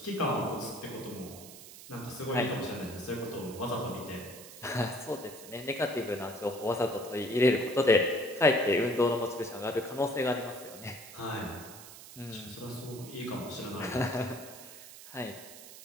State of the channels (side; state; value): right; noise; hiss, 15 dB below the sound